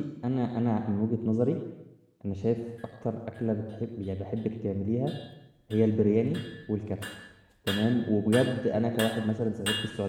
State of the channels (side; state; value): both; identical; correlation 1.00